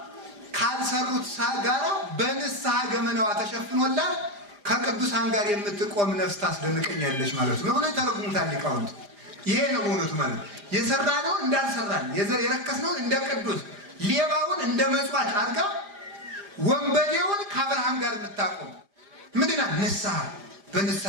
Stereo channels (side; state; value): left; late; 4.9 ms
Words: ካልሰሩት ጋራ በንስሐ ገመናዋ ተሸፍኖላት ከቅዱሳን ጋር የምትቆም ነፍስ ታስደንቀኛለች ማለት ነው ብሎ ተረጉሙታል ሊቃውንት። ይሄ ነው በእውነቱ ማለት የሰራነውን እንዳልሰራን የረከስነውን እንደ ቅዱስ ሌባውን እንደ መጽዋች አድርጋ ወንበዴውን ከአብርሃም ጋር የምታቆም ምንድና ንስሐ።